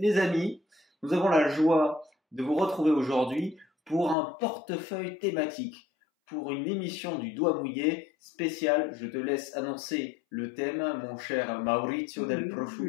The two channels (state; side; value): drops out; right; at 4.2 s